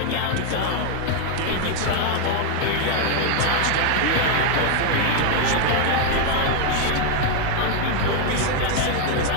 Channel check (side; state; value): both; different; correlation 0.00